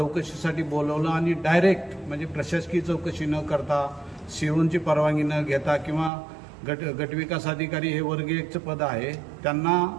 बोलवलं आणि डायरेक्ट म्हणजे प्रशासकीय चौकशी न करता सीओची परवानगी न घेता किंवा गटविकास अधिकारी हे वर्ग 1चं पद आहे त्यांना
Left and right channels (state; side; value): drops out; left; at 6.1 s